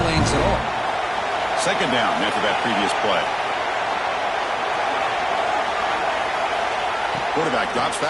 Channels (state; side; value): identical; both; correlation 1.00